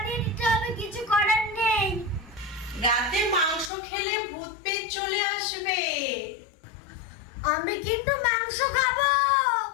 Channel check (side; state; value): right; drops out; at 3.7 s